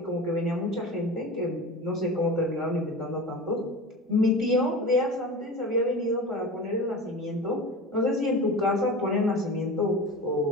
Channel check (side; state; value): both; normal; correlation 0.32